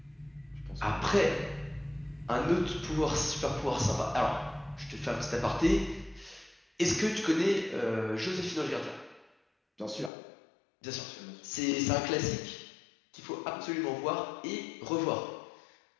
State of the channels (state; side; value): drops out; right; at 10.1 s